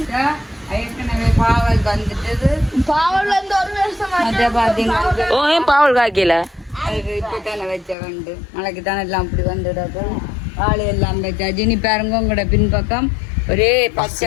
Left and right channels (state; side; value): drops out; right; at 8.0 s